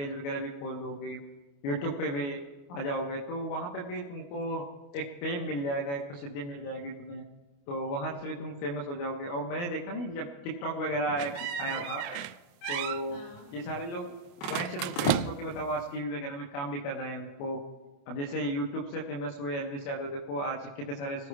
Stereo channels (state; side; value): late; right; 28 ms